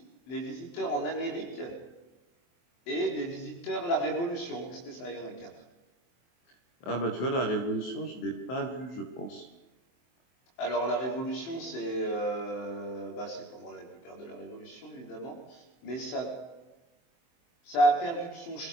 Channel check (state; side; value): late; right; 23 ms